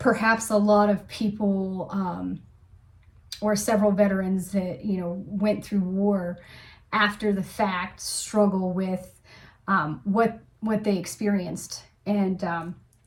a lot of people, or several veterans that, went through war after the fact, struggle with what they experienced. And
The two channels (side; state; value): both; identical; correlation 1.00